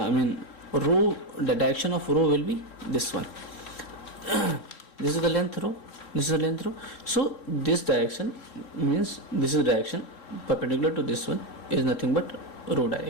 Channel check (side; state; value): right; late; 3.7 ms